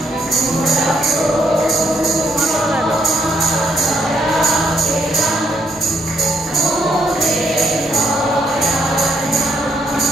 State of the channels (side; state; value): both; normal; correlation 0.73